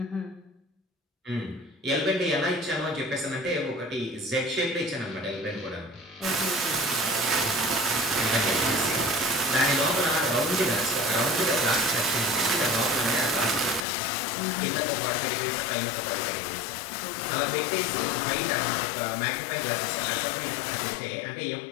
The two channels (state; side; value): drops out; right; at 13.9 s